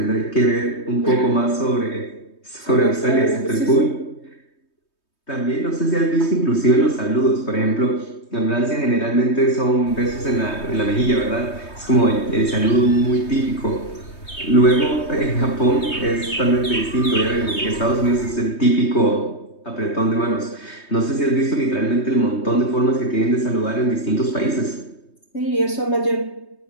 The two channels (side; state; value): right; late; 3.2 ms